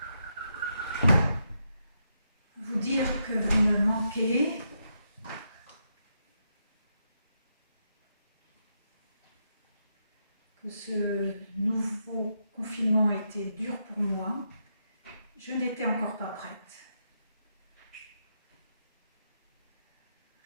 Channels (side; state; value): both; inverted; correlation -0.82